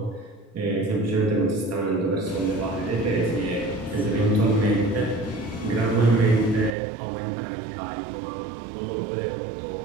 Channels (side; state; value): left; drops out; at 6.8 s